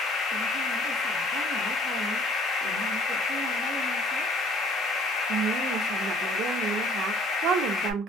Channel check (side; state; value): both; normal; correlation 0.56